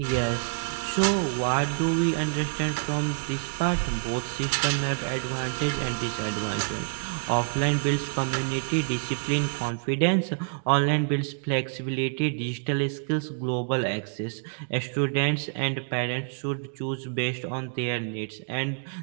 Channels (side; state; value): left; silent; digital silence